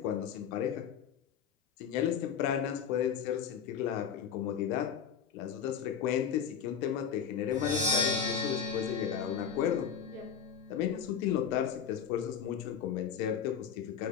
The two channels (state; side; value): quieter; right; 7.6 dB